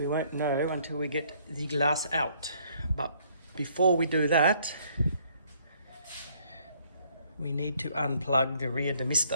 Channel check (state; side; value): inverted; both; correlation -0.64